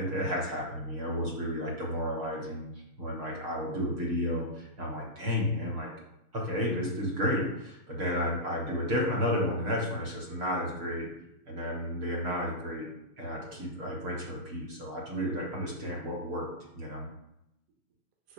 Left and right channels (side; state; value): left; late; 6.6 ms